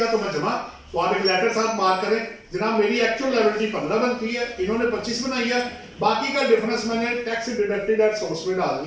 तो मैं जमा। तो आप एक लेटर साथ मार्क करें, जनाब मेरी एक्चुअल लायबिलिटी 15 बनती है, इन्होंने 25 बनाई है, बाकी का डिफरेंस मैंने टैक्स डिडक्टेड एट सोर्स में डाल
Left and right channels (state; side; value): identical; both; correlation 1.00